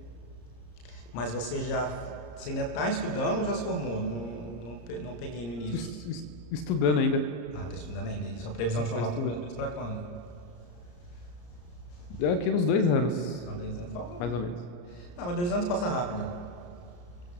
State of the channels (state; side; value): late; right; 34 ms